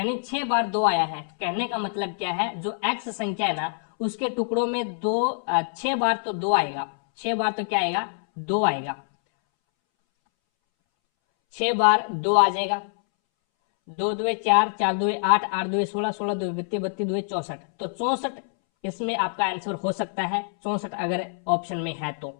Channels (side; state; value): right; silent; 61 dB below the other